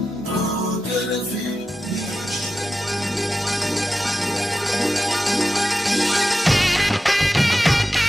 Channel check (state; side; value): normal; both; correlation 0.92